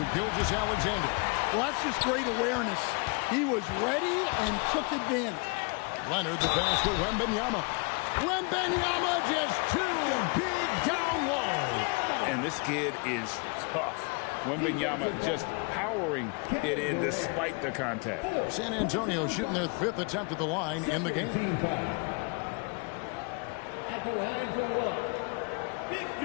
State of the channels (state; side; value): quieter; right; 33.2 dB